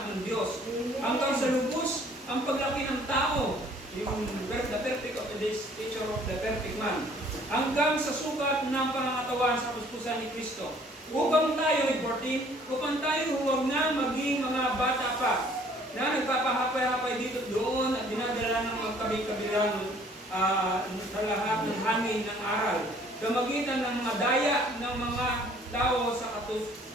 ng Diyos. Hanggang sa lubos ang paglaki ng tao, yung the perfect of the stature of the perfect man. Hanggang sa sukat ng pangangatawan sa kuskusan ni Kristo. Upang tayo, 14, upang tayo huwag na maging mga bata pa na nagpapahapay-hapay dito doon at dinadala ng magkabi-kabilang sa lahat ng hangin ng aral. Kamagitan ng mga daya ng mga tao sa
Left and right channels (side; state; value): both; normal; correlation 0.57